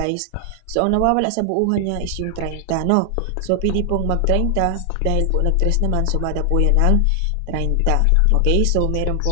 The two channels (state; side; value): different; both; correlation 0.00